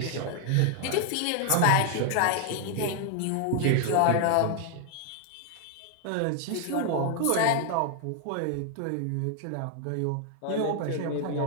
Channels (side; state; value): both; different; correlation 0.00